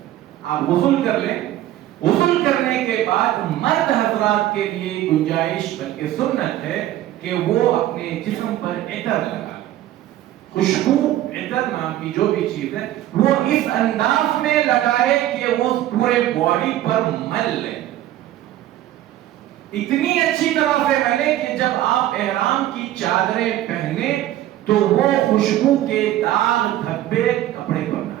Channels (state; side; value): quieter; left; 13.6 dB